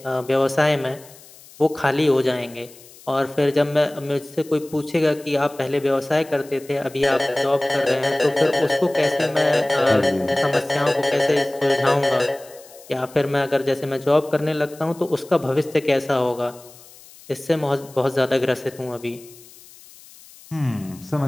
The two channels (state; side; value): noise; left; hiss, 22 dB below the sound